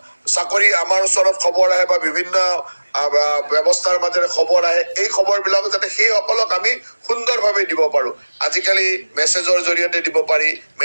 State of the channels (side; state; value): both; inverted; correlation -1.00